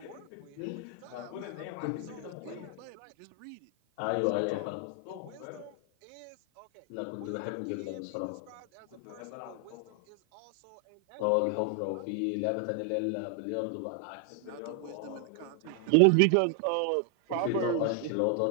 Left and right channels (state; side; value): different; both; correlation 0.00